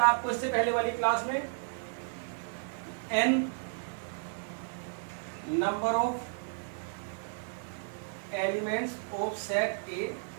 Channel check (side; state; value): left; silent; digital silence